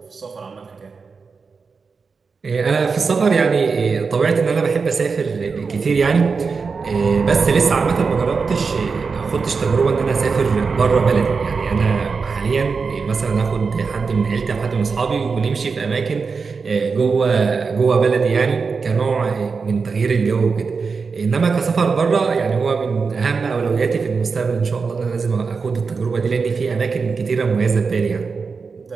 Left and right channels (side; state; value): left; quieter; 5.0 dB